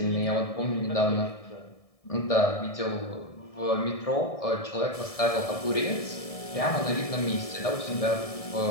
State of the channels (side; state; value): right; late; 1.7 ms